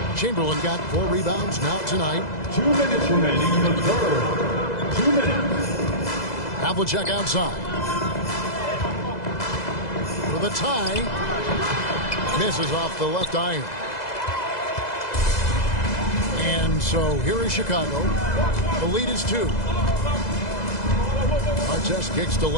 Chamberlain got 4 rebounds now tonight. 2 minutes remaining in the third. 2 minutes. Havlicek outside. For the tie. Misses off the left iron. And so here is Chicago. The lead is 2. Artest kicks to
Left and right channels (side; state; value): right; late; 2.0 ms